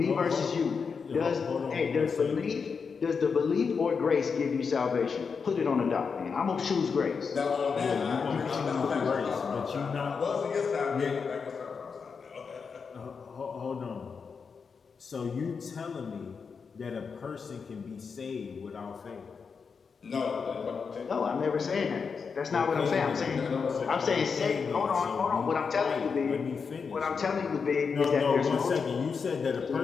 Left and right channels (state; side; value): quieter; right; 5.6 dB